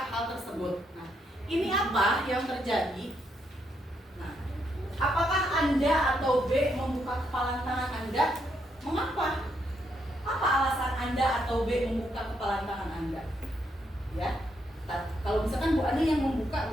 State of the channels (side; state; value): both; normal; correlation 0.77